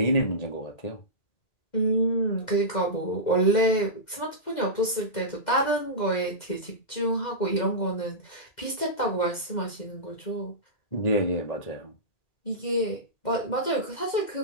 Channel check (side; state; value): right; late; 2.0 ms